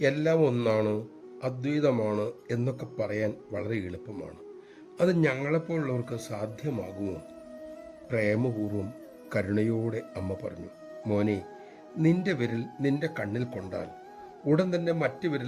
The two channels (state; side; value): identical; both; correlation 1.00